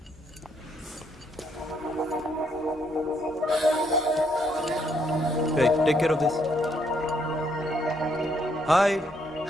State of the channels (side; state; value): both; normal; correlation 0.72